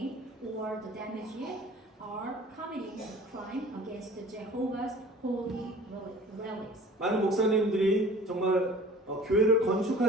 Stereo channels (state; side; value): normal; both; correlation 0.45